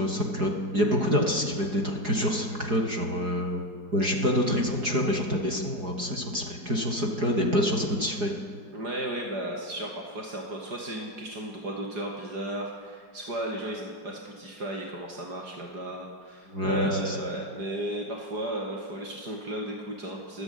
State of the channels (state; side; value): late; left; 4.8 ms